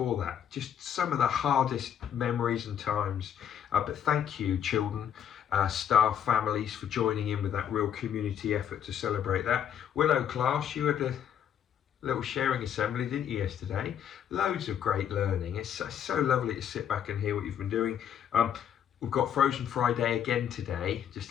that. Just some of the hardest memories and times. But thank you, children, staff, families, for joining in with that real community effort to celebrate that. Willow class, you had a little sharing assembly, didn't you, yesterday? Loads of great learning. It's so lovely to sit back and hear what you've been doing. We've got Frozen Friday again today,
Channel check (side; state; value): right; quieter; 9.2 dB